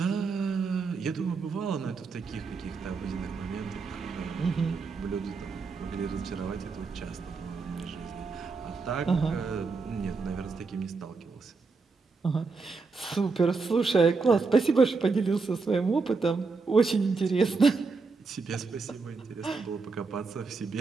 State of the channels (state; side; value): quieter; left; 4.4 dB